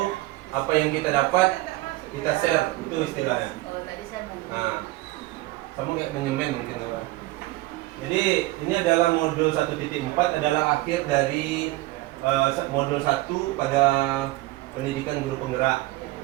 apa yang kita dapat kita share, itu istilahnya. Nah, kamu kayak menyemen mungkin apa? Jadi ini adalah modul 1.4 adalah akhir dari modul 1 pada pendidikan guru penggerak,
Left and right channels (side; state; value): left; quieter; 19.1 dB